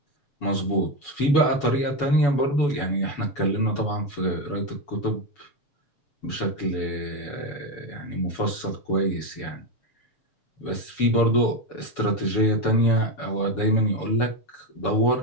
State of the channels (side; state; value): right; late; 7.0 ms